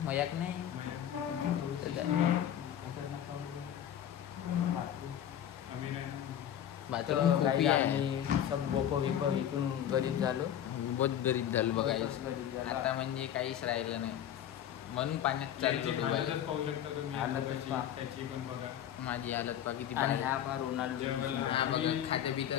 मजाक नाही. बाथरूम खूप आहे. सब बोको विको विकून गरीब झालो. बहुत गरीब झालो बघायचं आता, म्हणजे काहीच राहिलं नाही. म्हणून पाण्यात चालतो डुबायला. माझी हालत पा किती खाते पितं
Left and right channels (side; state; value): right; quieter; 10.3 dB